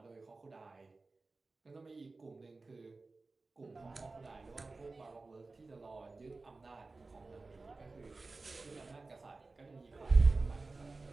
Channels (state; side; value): quieter; left; 3.6 dB